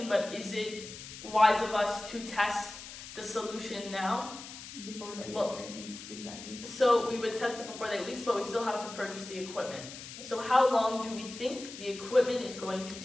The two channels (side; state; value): left; noise; hiss, 13 dB below the sound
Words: but is it wise of us to test the solution now? Before the Well- 8 weeks, exactly. So we would test it before the 8 weeks, but we still have to purchase the equipment. So how long do we think the equipment is going to